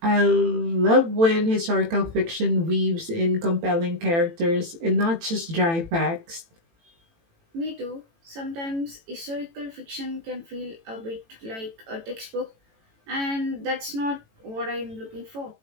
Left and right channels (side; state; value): left; late; 18 ms